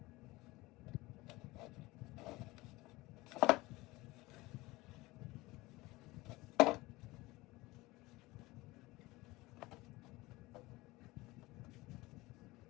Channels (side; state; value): right; quieter; 20.8 dB